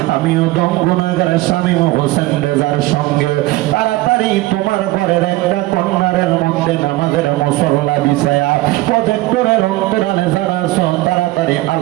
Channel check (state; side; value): quieter; left; 18.6 dB